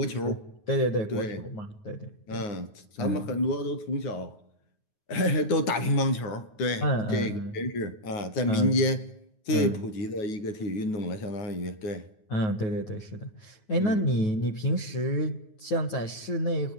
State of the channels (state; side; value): late; right; 9.5 ms